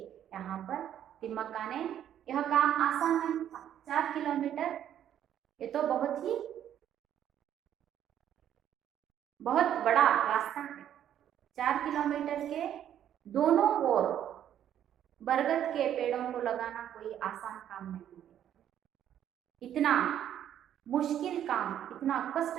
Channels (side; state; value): left; quieter; 10.5 dB